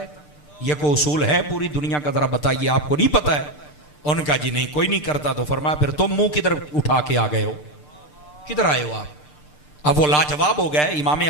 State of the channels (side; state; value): right; late; 6.7 ms